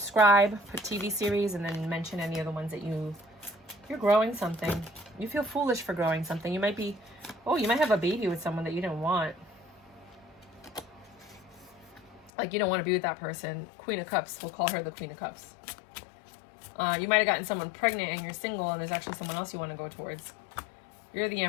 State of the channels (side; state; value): right; drops out; at 12.3 s